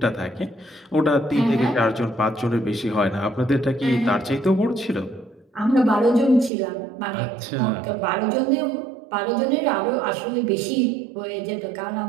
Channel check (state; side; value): drops out; left; at 6.5 s